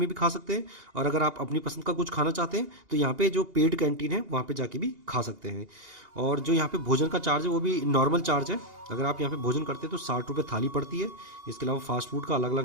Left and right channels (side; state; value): left; late; 2.8 ms